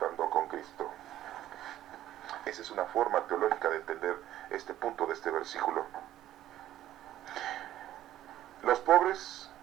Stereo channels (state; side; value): quieter; left; 13.0 dB